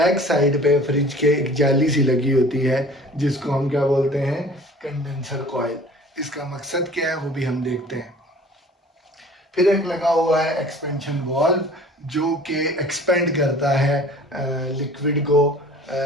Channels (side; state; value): both; normal; correlation 0.47